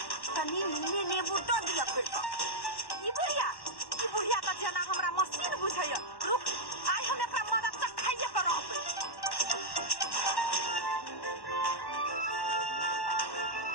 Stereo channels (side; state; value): right; late; 1.1 ms